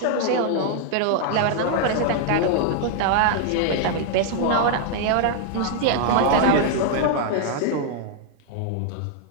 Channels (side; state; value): both; different; correlation 0.00